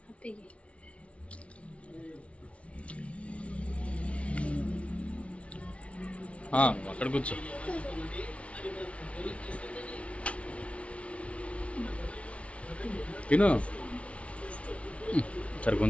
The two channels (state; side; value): late; right; 0.062 ms